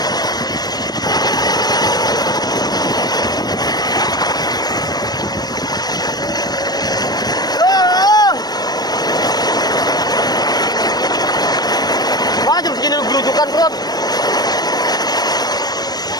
Jam segini lu gelujukan perut.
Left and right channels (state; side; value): late; right; 0.19 ms